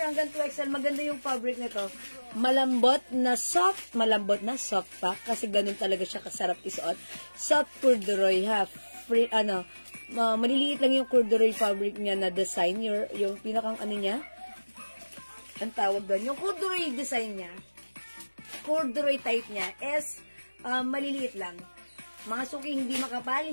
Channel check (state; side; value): inverted; both; correlation -1.00